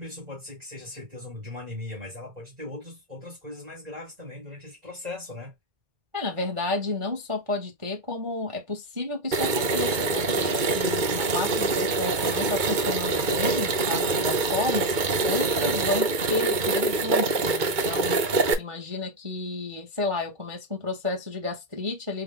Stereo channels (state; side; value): late; left; 2.2 ms